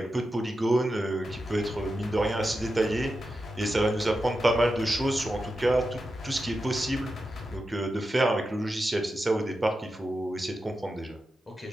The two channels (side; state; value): both; normal; correlation 0.90